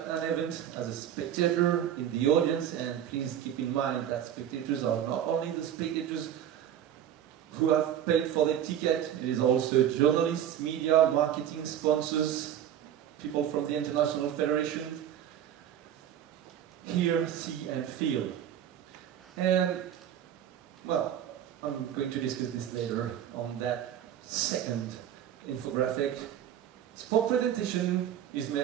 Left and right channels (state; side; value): quieter; left; 10.3 dB